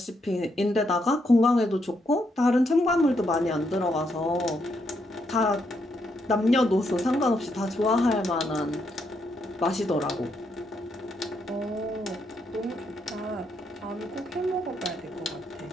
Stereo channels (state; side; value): normal; both; correlation 0.78